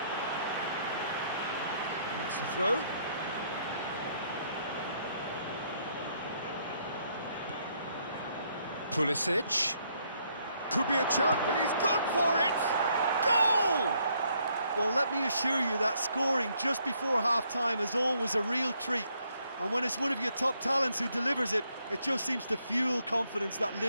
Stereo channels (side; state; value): both; inverted; correlation -0.71